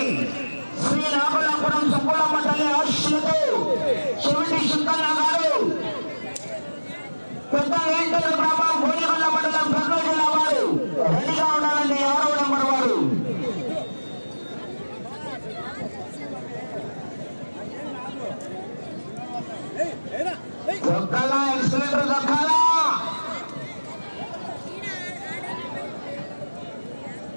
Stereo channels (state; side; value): inverted; both; correlation -1.00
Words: శ్రీ నాగలాపురం సుబ్బులమ్మ తల్లి ఆశీస్సులతో చెవిటి సుందన్న గారు, పెద్ద వేంకట గ్రామం, గోలిగొండ మండలం, కర్నూలు జిల్లా వారు రెడీగా ఉండాలండి. 6వ నెంబర్ వారు దొక్కాలా, ఎక్సలెంటర్ దొక్కాలా.